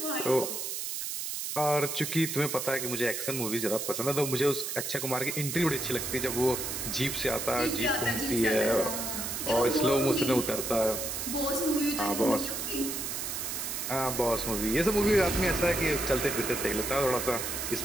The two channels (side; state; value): right; noise; hiss, 4 dB below the sound